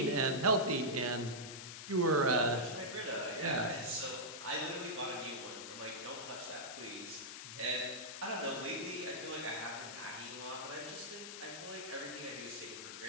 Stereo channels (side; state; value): left; noise; hiss, 9 dB below the sound